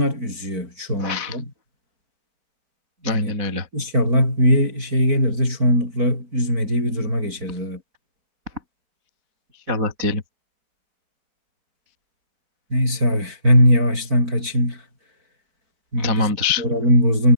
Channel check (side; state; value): left; late; 4.5 ms